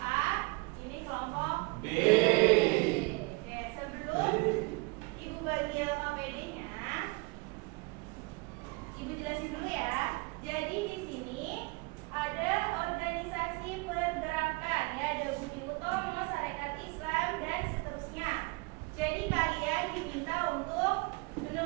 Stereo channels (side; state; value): left; quieter; 27.3 dB